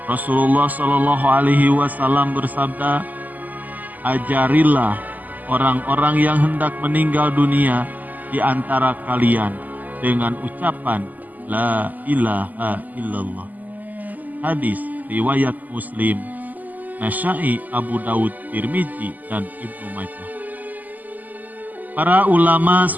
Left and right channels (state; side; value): late; left; 0.082 ms